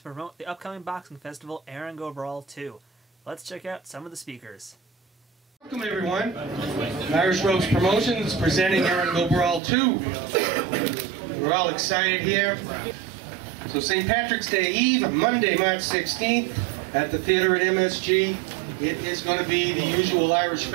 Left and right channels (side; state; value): left; drops out; at 9.6 s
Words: promote the upcoming boxing festival Erin Go Brawl 2. Let's check out some of the speakers. Welcome everyone. Irish Ropes Promotions presenting Erin Go Brawl 2. We're all excited here. So St. Patrick's Day Eve, Monday, March 16th at the theater at MSG. It is going to be the usual Irish